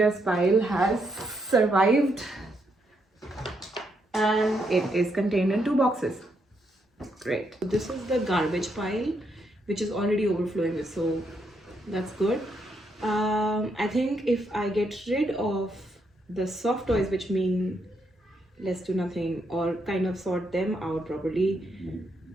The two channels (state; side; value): normal; both; correlation 0.78